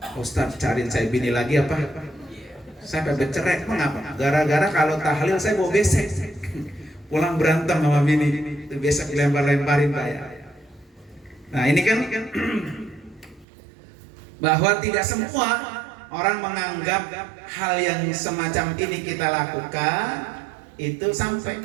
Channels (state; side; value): drops out; left; at 13.5 s